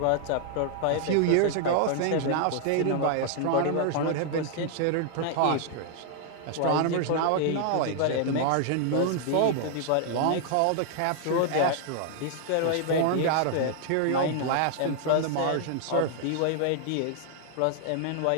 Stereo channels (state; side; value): different; both; correlation 0.00